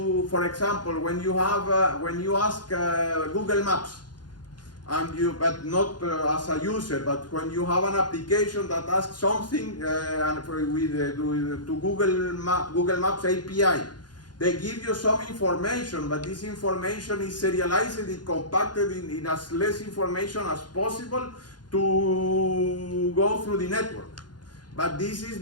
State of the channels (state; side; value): late; right; 0.70 ms